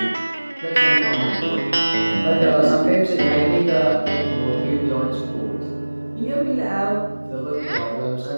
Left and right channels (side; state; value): both; inverted; correlation -1.00